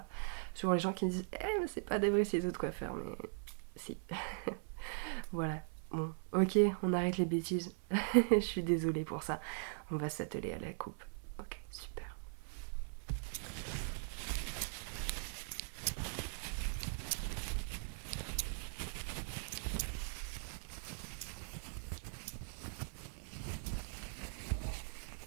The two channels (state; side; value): silent; left; 51 dB below the other